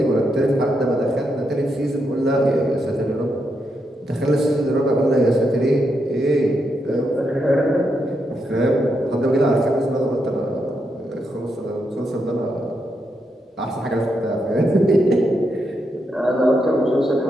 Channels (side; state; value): both; normal; correlation 0.82